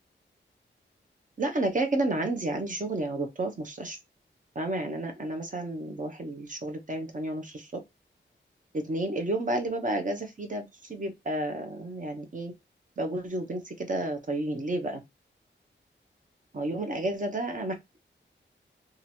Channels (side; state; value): both; normal; correlation 0.53